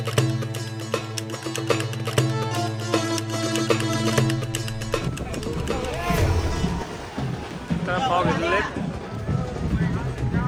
तर पाव घेतलेले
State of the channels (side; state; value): both; identical; correlation 1.00